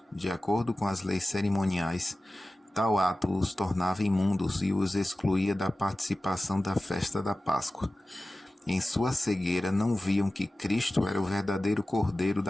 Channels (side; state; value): both; normal; correlation 0.96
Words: De acordo com as leis cerimoniais, tal ato os tornava imundos e os excluía da participação da festa da Páscoa. Em sua cegueira não viam que Cristo era o verdadeiro Cordeiro